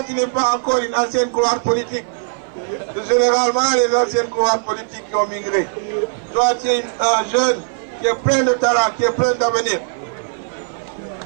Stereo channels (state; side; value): silent; left; 58 dB below the other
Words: tu n'es pas encore une ancienne couloir politique. C'est généralement les anciennes couloirs politiques qui ont migré. Toi, tu es un jeune qui est plein de talent, qui est plein d'avenir.